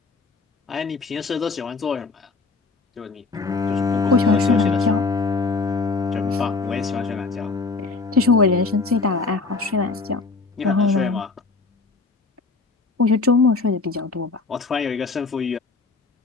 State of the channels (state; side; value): quieter; right; 4.0 dB